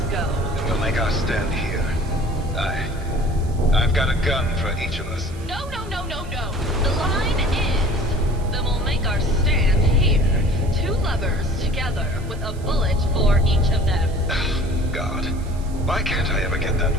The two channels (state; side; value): noise; right; hiss, 23 dB below the sound